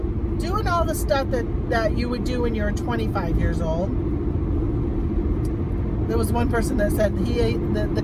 doing all the stuff that you would do when you're 25 years old. There was one person that said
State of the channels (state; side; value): identical; both; correlation 1.00